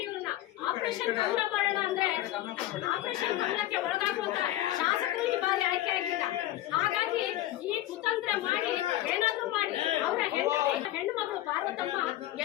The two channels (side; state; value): right; quieter; 14.8 dB